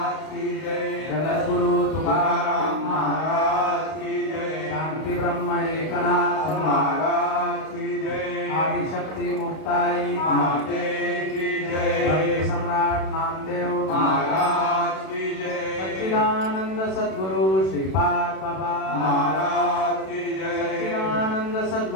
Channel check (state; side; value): late; right; 32 ms